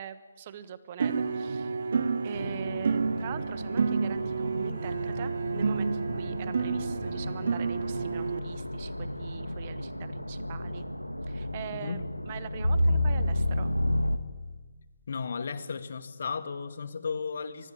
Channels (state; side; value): inverted; both; correlation -0.88